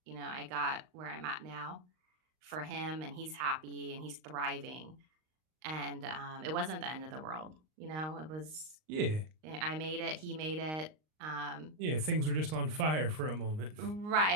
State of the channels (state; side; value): late; left; 39 ms